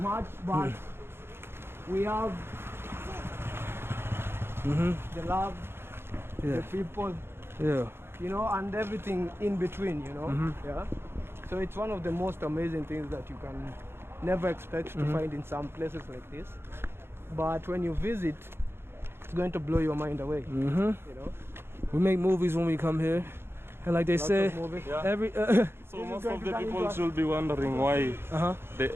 much, but we have the love, Yeah. the people, Yeah. you know, and everything in between, you know. Yeah. So it's one of the most amazing things that you can never expect to find in some places like this. But when you visit, it's going to blow your mind away. You know. We make movies when we come here, and like they Lots say, of movies. Yeah. every So most of the people should be wondering why the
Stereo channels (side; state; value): left; late; 0.11 ms